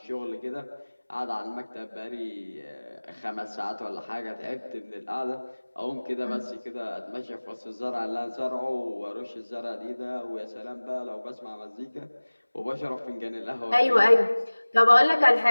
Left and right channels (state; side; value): inverted; both; correlation -1.00